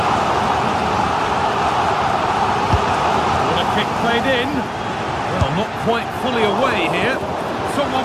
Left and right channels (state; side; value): identical; both; correlation 1.00